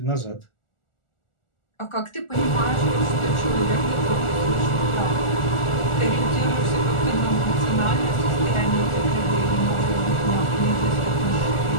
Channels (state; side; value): late; right; 1.4 ms